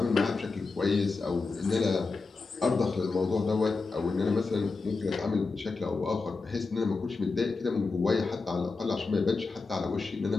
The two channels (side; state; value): right; quieter; 4.1 dB